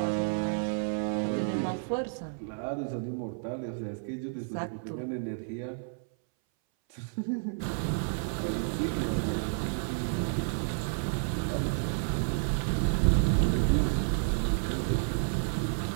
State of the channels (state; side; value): silent; left; 57 dB below the other